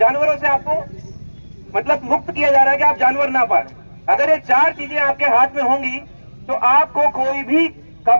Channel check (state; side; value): inverted; both; correlation -1.00